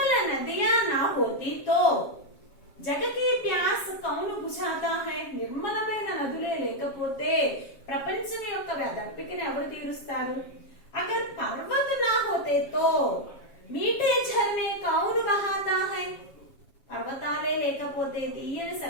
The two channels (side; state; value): right; late; 7.3 ms